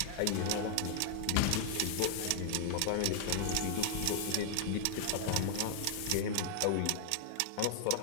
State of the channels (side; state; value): both; different; correlation 0.00